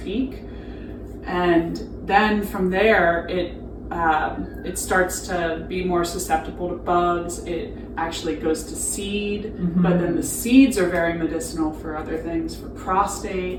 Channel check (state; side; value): identical; both; correlation 1.00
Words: And then from there, it starts to be more susceptible to bugs. It actually goes to seed, but then the seeds are very medicinal for other things, for